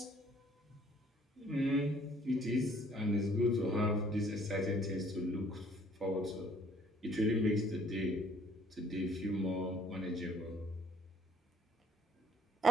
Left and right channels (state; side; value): normal; both; correlation 0.59